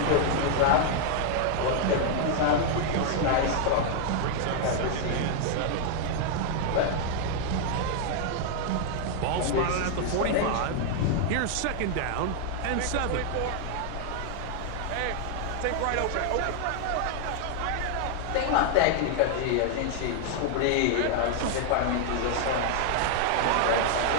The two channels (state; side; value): different; both; correlation 0.00